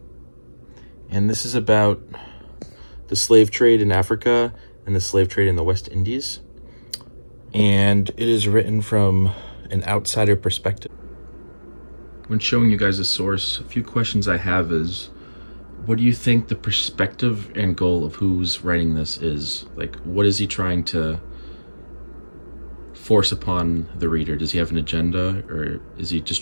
And this is about the slave trade in Africa and the slave trade in the West Indies. And it is written from an outsider perspective. When showing you guys a source, a few questions I have is, what do you think the perspective and goal of who's writing this is? Like, what is he trying to force upon the reader? Does he have an agenda, or is he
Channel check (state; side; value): inverted; both; correlation -1.00